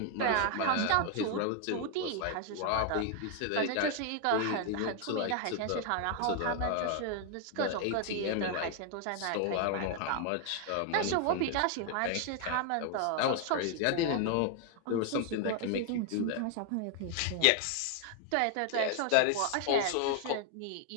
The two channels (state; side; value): different; both; correlation 0.00